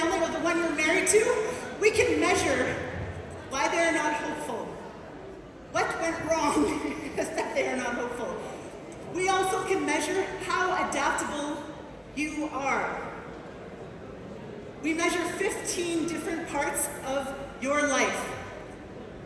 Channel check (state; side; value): identical; both; correlation 1.00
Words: or the one you're married to? We can measure why they're not hopeful. What went wrong is that they are not hopeful. We also can measure how adaptable you are. We measure 15 different parts of your life.